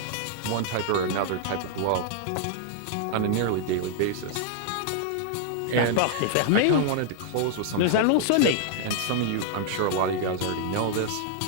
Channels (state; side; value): different; both; correlation -0.01